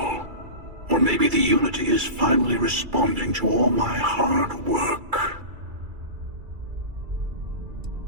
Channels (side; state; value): left; late; 2.3 ms